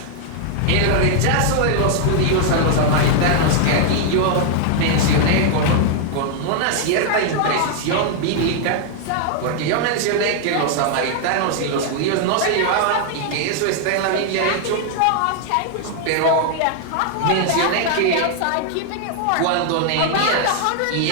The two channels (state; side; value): different; both; correlation 0.00